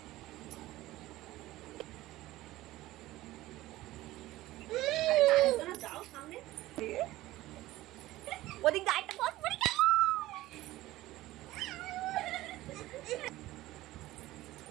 ওদিক দাইটা কত পড়ি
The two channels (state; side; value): quieter; left; 16.8 dB